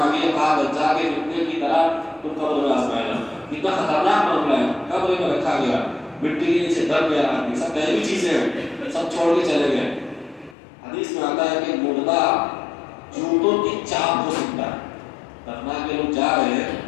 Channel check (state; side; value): drops out; right; at 10.6 s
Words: کہا دجال کے فتنے کی طرح تم قبر میں آزمائے جاؤ. کتنا خطرناک معاملہ ہے, قبر میں رکھا گیا, مٹی کے نیچے دب گیا آدمی, سب غیبی چیزیں ہیں, سب چھوڑ کے چلے گئے. حدیث میں آتا ہے کہ مردہ جوتوں کی چاپ ہو سکتا ہے. دفنا کے لوگ جا رہے